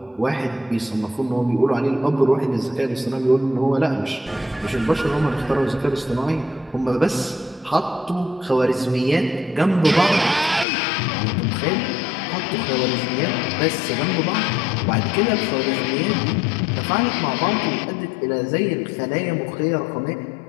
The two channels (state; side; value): drops out; right; at 10.7 s